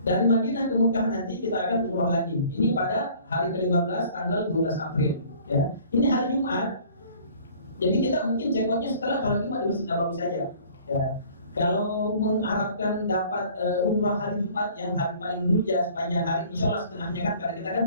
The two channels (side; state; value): both; inverted; correlation -0.52